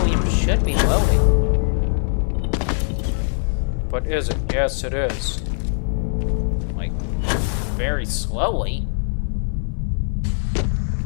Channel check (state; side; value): silent; right; 65 dB below the other